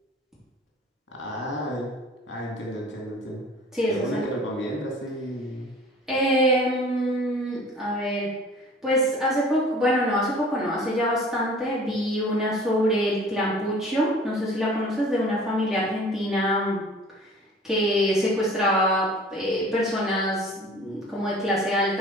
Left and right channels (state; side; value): normal; both; correlation 0.47